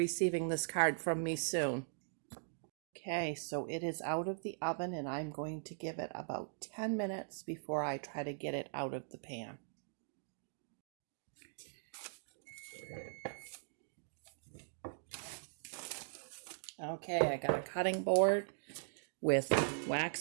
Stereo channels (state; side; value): silent; left; digital silence